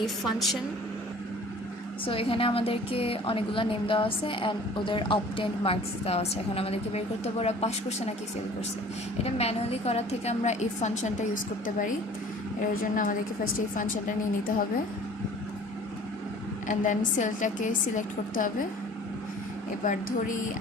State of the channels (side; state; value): both; normal; correlation 0.48